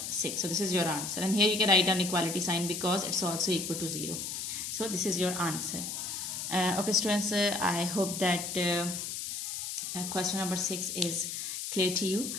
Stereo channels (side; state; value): left; noise; hiss, 5 dB below the sound